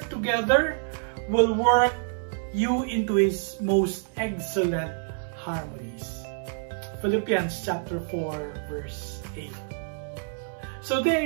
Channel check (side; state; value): left; silent; digital silence